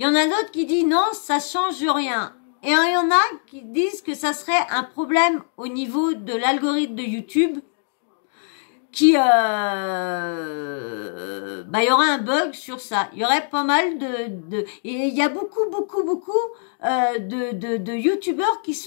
y en a d'autres qui disent non, ça change rien. Et il y en a qui disent que ça serait un problème au niveau de l'algorithme de YouTube. Il y aurait un bug sur ça. Il y aurait pas mal et il y a beaucoup de youtubeurs qui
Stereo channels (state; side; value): silent; right; digital silence